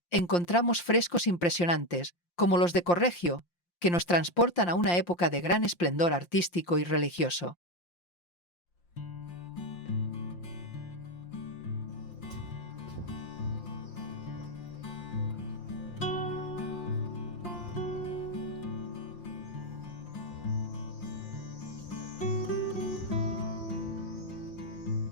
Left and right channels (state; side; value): late; right; 5.7 ms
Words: encontramos frescos impresionantes, como los de Correggio, que nos transportan a una época de gran esplendor artístico y religioso.